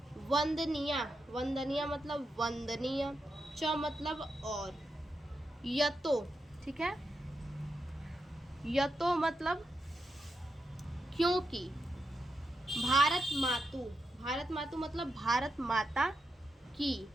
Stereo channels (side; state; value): both; normal; correlation 0.86